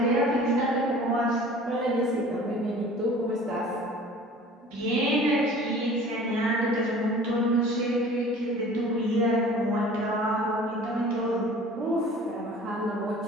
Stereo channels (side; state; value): both; normal; correlation 0.45